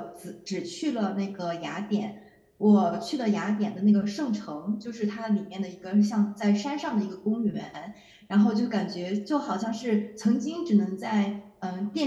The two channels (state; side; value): identical; both; correlation 1.00